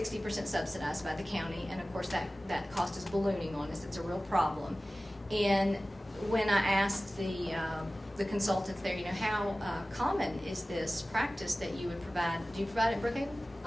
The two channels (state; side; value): normal; both; correlation 0.97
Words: subsidized by the county, and of course that cost is ballooning on us. It's a real problem. And when I asked the consultants there, you know, how common is this practice that you would provide? Do you provide it in Brookhaven?